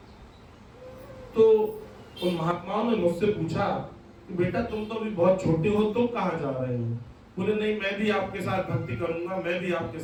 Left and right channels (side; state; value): both; identical; correlation 1.00